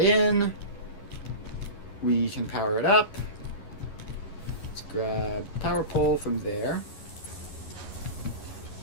in. We can power it up. Let's grab power pole from there.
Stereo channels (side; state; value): right; late; 11 ms